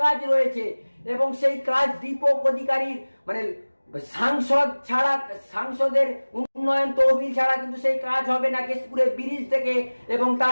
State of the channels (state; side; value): inverted; both; correlation -1.00